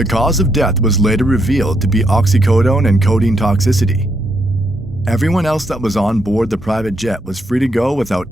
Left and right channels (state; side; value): normal; both; correlation 0.77